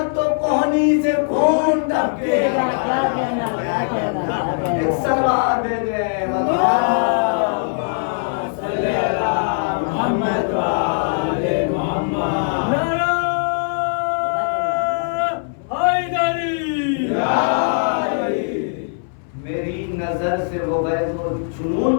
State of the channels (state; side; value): silent; right; 61 dB below the other